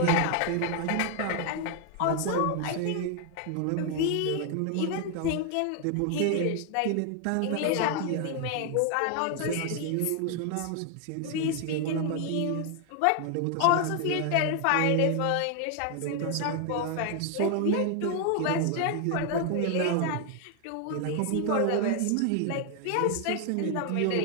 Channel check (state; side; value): different; both; correlation 0.00